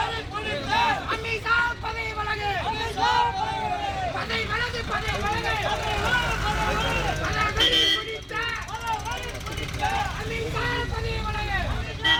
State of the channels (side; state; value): both; identical; correlation 1.00